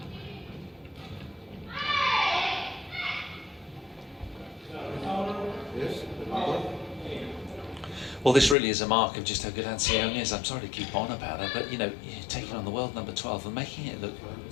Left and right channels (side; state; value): right; drops out; at 8.6 s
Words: Yes, Well, this really is a mark of just how good Seyoung is. I'm sorry to keep on about her, but you know, taking on the world number 12 and making it look